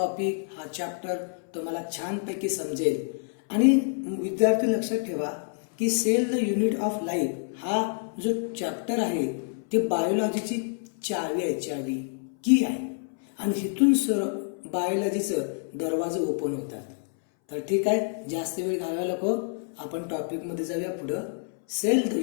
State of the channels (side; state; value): right; silent; 60 dB below the other